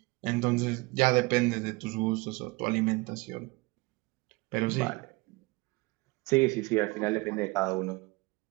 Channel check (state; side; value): quieter; left; 24.8 dB